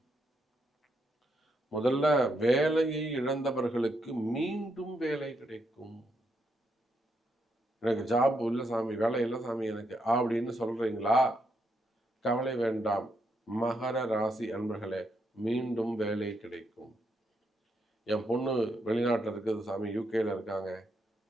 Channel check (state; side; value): normal; both; correlation 0.79